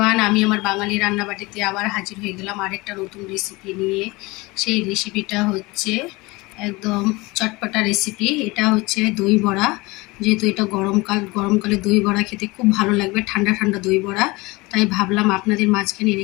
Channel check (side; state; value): right; quieter; 23.2 dB